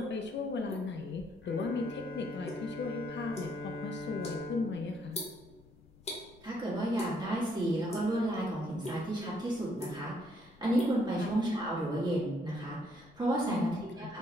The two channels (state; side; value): noise; left; rumble, 25 dB below the sound